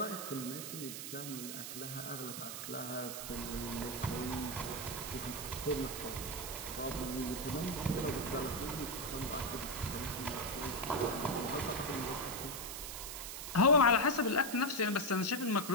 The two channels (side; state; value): right; noise; hiss, 7 dB below the sound